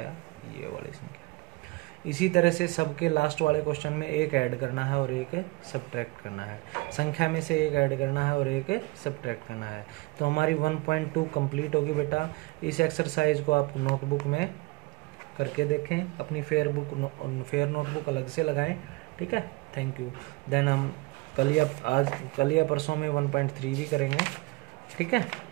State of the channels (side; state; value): left; quieter; 23.9 dB